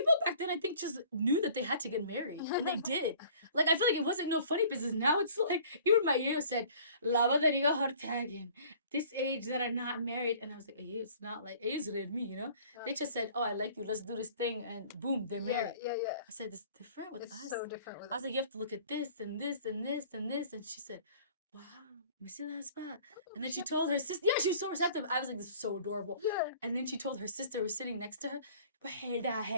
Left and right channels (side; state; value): both; inverted; correlation -0.51